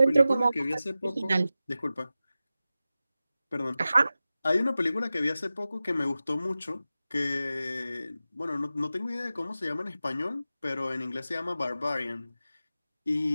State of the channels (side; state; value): both; inverted; correlation -0.94